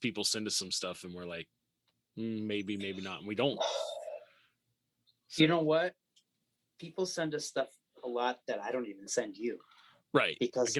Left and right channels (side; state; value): both; identical; correlation 1.00